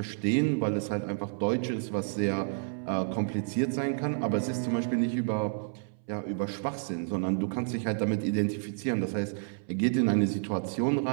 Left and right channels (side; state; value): left; silent; 58 dB below the other